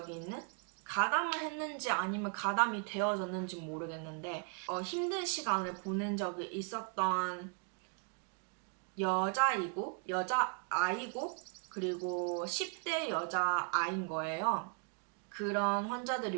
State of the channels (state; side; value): quieter; left; 39.8 dB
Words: 있는? 가담을 했는지 아니면 가담이 되어졌는지 모르겠는데 힘든 시간을 보낸 적이 있었던 여자아이고 그리고 10대 여자아이인 거예요. 그런 환자들이